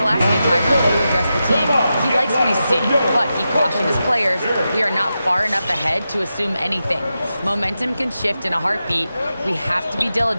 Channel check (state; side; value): inverted; both; correlation -0.90